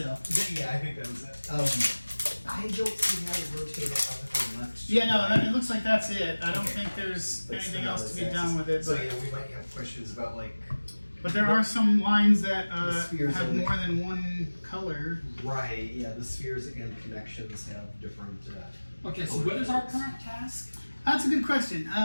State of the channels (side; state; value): both; inverted; correlation -1.00